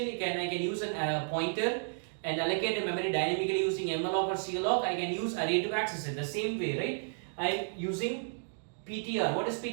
I can use a pointer and allocate the memory dynamically using malloc or cloc. I can use array to access it the same way, right? I'm using PTR. What is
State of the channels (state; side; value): silent; left; digital silence